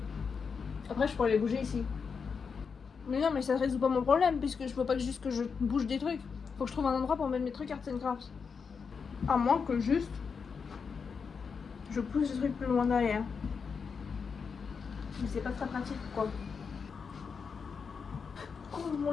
Après je pourrais les bouger ici. Mais non, mais ça résout pas mon problème, puisque je peux pas juste que je bouge des trucs. Faut que je trouve un endroit pour mettre mes trucs Arts and Crafts. À moins que juste je pousse les trucs plus loin derrière. Mais c'est pas très pratique quoi. Oh mon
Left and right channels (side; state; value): right; quieter; 5.7 dB